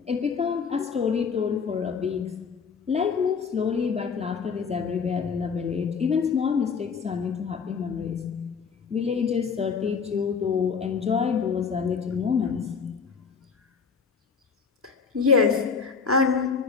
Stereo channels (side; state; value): right; quieter; 5.8 dB